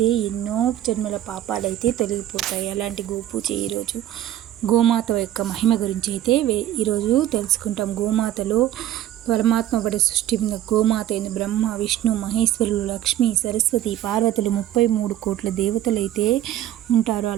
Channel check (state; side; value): quieter; left; 12.6 dB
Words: ఎన్నో జన్మల పాపాలైతే తొలగిపోతాయి. అలాంటి గోపూజ ఈరోజు గోమాత యొక్క మహిమ గురించి అయితే ఈరోజు తెలుసుకుంటాం. గోమాతలో పరమాత్మ పడి సృష్టి గోమాత అయిన బ్రహ్మ, విష్ణు, మహేశ్వరులు, లక్ష్మి, సరస్వతి, పార్వతులు 33 కోట్ల దేవతలు అయితే ఉంటారు.